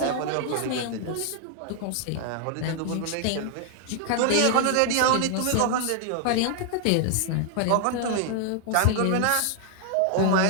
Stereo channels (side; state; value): both; different; correlation 0.00